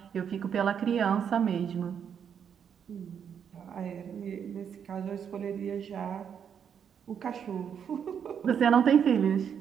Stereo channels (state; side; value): quieter; left; 7.9 dB